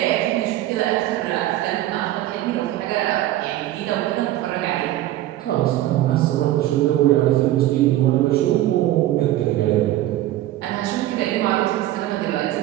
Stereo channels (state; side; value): quieter; left; 14.5 dB